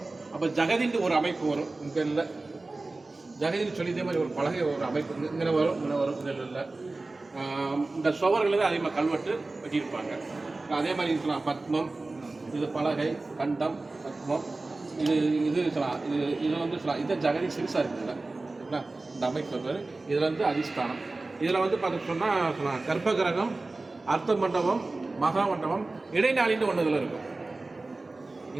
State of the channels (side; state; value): left; quieter; 3.3 dB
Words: அப்போ ஜெகதின்னு ஒரு அமைப்பு வரும். இங்கே இல்லை, ஜெகதின்னு சொல்லி இதே மாதிரி ஒரு பலகை ஒரு அமைப்பு இங்கே வரும். இதில் இல்லை. இந்த சுவர்கள் தான் அதிகமாக கல்வெட்டு வெட்டியிருப்பாங்க. அதே மாதிரி சொல்லலாம் பத்மம், இது பலகை, கண்டம், பத்மம், இது சொல்லலாம். இது வந்து சொல்லலாம். இது ஜெகதி சிறுசாக இருக்குதுல்ல, சரிங்களா? இந்த அமைப்பு பேர். இதில் வந்து அதிஷ்டானம். இதில் வந்து பார்த்து சொன்னால் கர்ப்பகிரகம், அர்த்த மண்டபம், மகா மண்டபம், இடைநாளின்னு ஒன்று இதில் இருக்கும்.